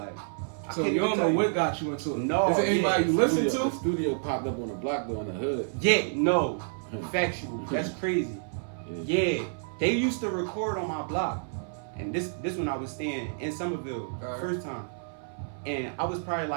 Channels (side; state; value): left; silent; 59 dB below the other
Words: so you don't know what got you into it? No. Is it anybody you listen to? The studio popped up on the block though in the hood. Yeah, no. Factual. That's crazy. Yeah. They used to record on my block. And this when I was staying in Somerville, first time. And I was probably